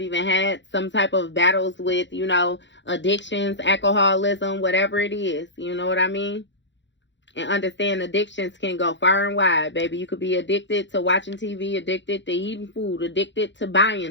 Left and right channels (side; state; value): right; late; 0.53 ms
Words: had some type of battles with, you know, addictions, alcoholism, whatever it is. You know what I mean? And understand addictions can go far and wide, baby. You could be addicted to watching TV, addicted to eating food, addicted to